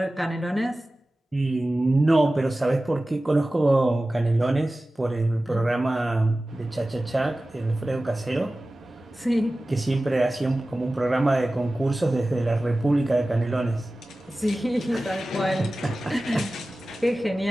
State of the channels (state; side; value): normal; both; correlation 0.96